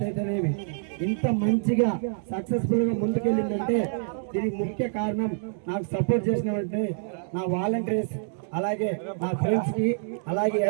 అయితేనేమి ఇంత మంచిగా సక్సెస్ఫుల్ గా ముందుకెళ్ళిందంటే దీనికి ముఖ్య కారణం నాకు సపోర్ట్ చేసినటువంటి నా వాలంటీర్స్, అలాగే నా ఫ్రెండ్స్ కి, అలాగే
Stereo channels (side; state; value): left; silent; digital silence